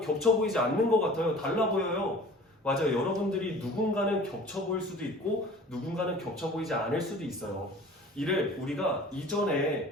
겹쳐 보이지 않는 것 같아요. 달라 보여요. 맞아요. 여러분들이 누군가는 겹쳐 보일 수도 있고 누군가는 겹쳐 보이지 않을 수도 있어요. 이를 우리가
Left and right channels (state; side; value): normal; both; correlation 0.45